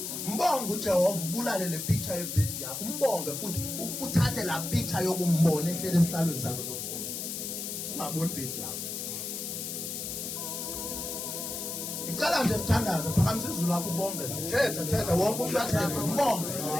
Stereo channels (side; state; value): left; noise; hiss, 5 dB below the sound